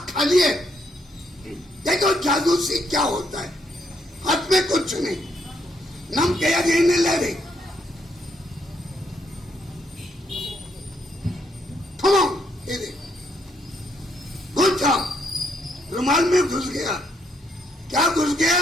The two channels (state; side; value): normal; both; correlation 0.74